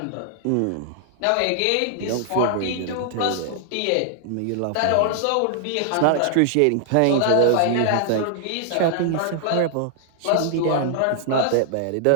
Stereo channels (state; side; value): different; both; correlation -0.01